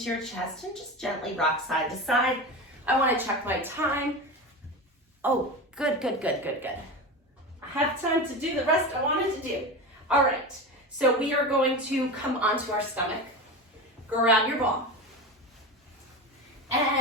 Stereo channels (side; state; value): both; normal; correlation 0.25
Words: your chest and just gently rock side to side. I want to check my time. Oh, good, good, good, good, good. I have time to do the rest I wanted to do. All right. So we are going to come onto our stomach. Grab your ball.